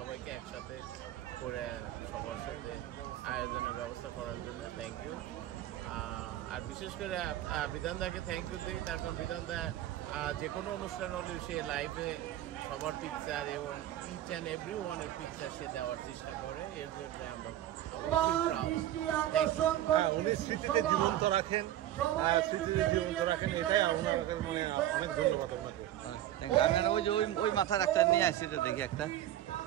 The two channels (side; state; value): left; quieter; 13.0 dB